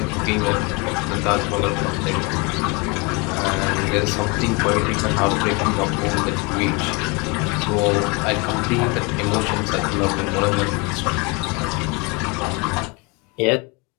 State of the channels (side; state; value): right; quieter; 29.0 dB